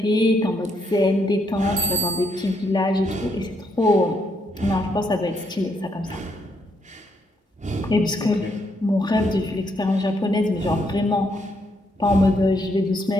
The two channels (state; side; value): normal; both; correlation 0.75